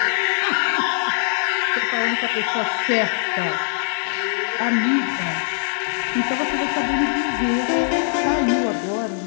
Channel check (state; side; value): silent; right; digital silence